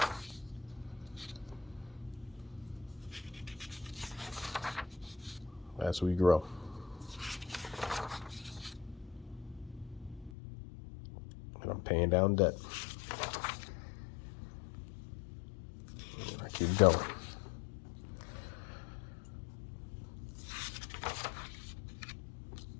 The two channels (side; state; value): right; drops out; at 10.3 s